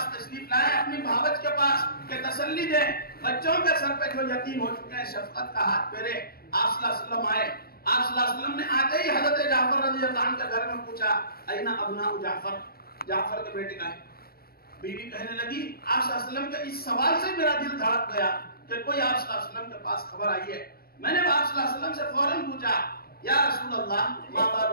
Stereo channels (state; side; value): late; right; 0.44 ms